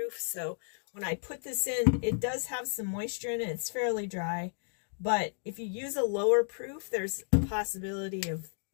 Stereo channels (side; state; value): right; silent; 56 dB below the other